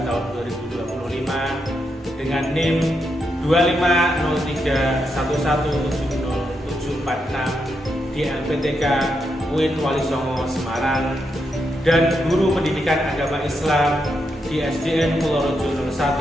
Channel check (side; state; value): both; normal; correlation 0.83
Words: tahun 2025 dengan NIM 25031170746 di LPTK UIN Walisongo Semarang dan guru pendidikan agama Islam di SDN Purworejo